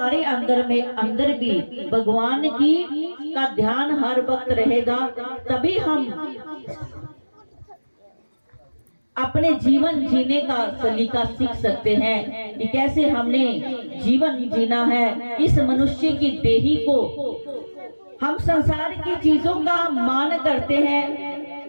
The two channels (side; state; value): both; inverted; correlation -1.00